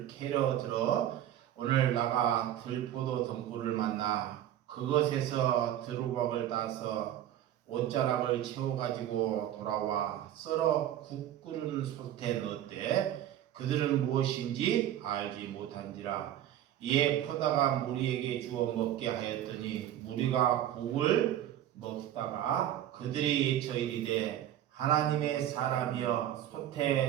캐러 들어 오늘 나가 들포도 덩굴을 만나 그것에서 두루박을 따서 옷자락을 채워가지고 돌아와 썰어 국 끓는 솥에 넣었대. 그들은 무엇인지 알지 못한지라. 이에 퍼다가 무리에게 주어 먹게 하였더니 무리가 국을 먹다가 그들이 외쳐 이르되 하나님의 사람이여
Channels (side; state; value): left; quieter; 11.9 dB